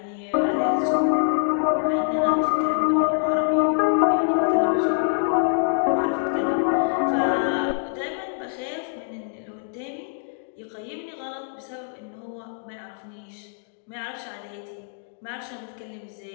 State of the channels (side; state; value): right; silent; digital silence